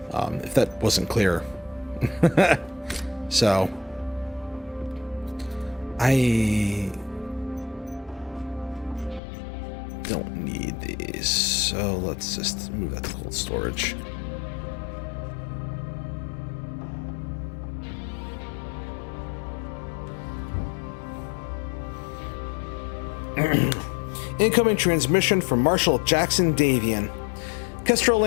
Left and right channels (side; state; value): right; drops out; at 9.2 s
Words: if that wasn't clear. So, I don't need these, so let's just move that to cold storage. Incoming transmission from Marshal Jackson Davian. Kestrel